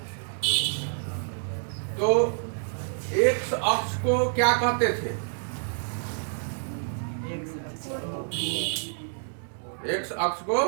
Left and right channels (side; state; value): left; silent; digital silence